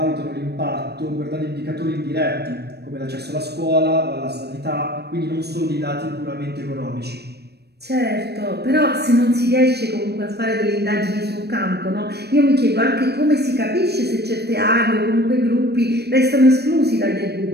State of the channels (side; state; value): left; late; 0.47 ms